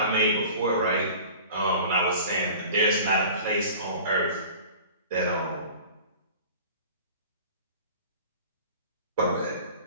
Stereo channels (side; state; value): both; inverted; correlation -0.42